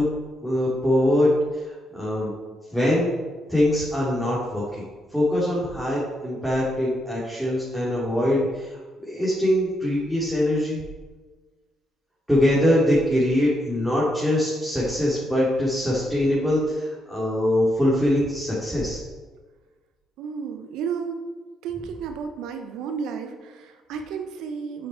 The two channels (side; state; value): both; normal; correlation 0.81